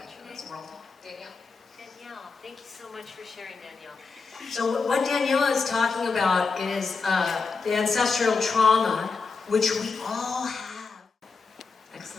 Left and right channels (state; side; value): quieter; right; 4.7 dB